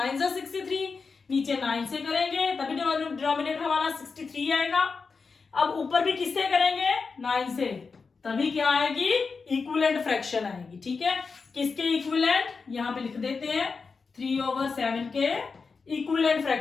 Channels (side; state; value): right; quieter; 4.8 dB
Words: जा 63, नीचे 9 से करेंगे तभी डिनोमिनेटर हमारा 63 आएगा। अब ऊपर भी किससे करेंगे, 9 से, तभी क्या आएगी, इक्विवेलेंट फ्रैक्शन आएगी, ठीक है। किसके इक्विवेलेंट, यहां पे लिख देते हैं 3/7 के इक्विवेलेंट